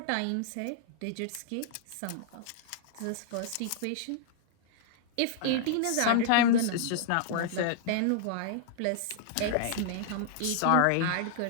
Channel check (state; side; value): different; both; correlation -0.01